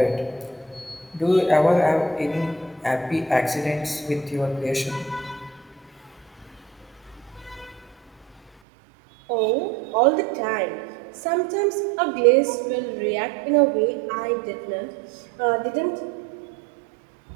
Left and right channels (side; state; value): left; drops out; at 8.5 s